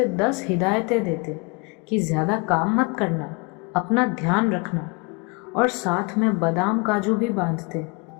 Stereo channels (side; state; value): right; quieter; 30.2 dB